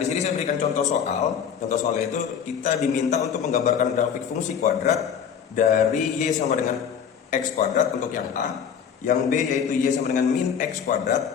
sini saya berikan contoh soal. Contoh soalnya itu kita diminta untuk menggambarkan grafik fungsi kuadrat dari y sama dengan x kuadrat untuk yang a, yang b yaitu y sama dengan min x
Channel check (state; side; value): quieter; right; 7.8 dB